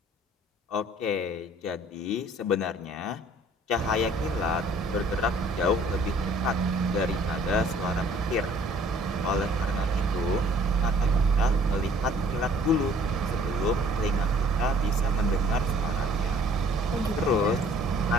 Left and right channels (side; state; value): both; normal; correlation 0.56